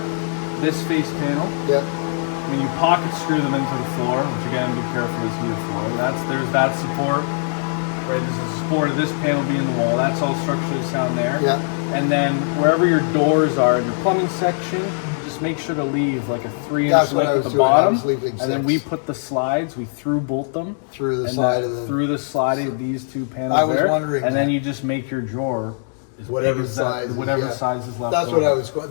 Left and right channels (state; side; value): silent; right; digital silence